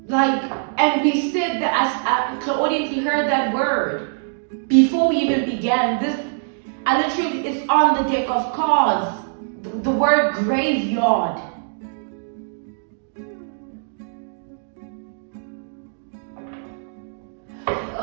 Like, and we said that the audience heard that word before we even began. I literally, it's on the deck of cards. The word graveyard.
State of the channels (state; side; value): silent; left; digital silence